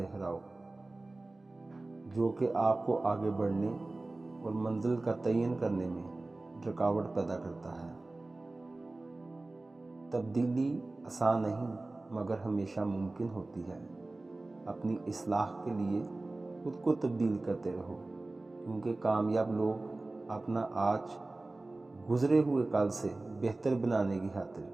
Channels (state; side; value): quieter; left; 3.1 dB